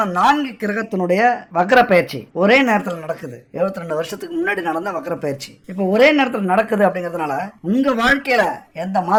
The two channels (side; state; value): both; identical; correlation 1.00